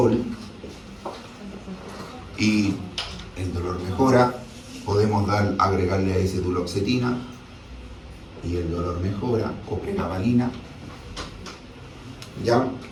y el dolor mejora. Podemos agregarle a ese duloxetina y el dolor mejora, o pregabalina. ¿Ya?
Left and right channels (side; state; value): both; identical; correlation 1.00